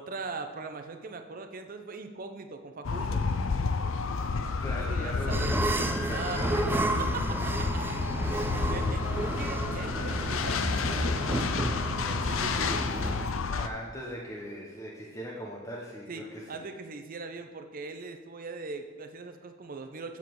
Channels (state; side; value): normal; both; correlation 0.55